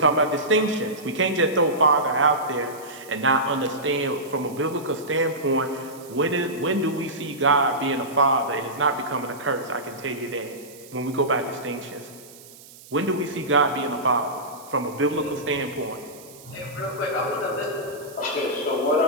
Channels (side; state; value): right; noise; hiss, 20 dB below the sound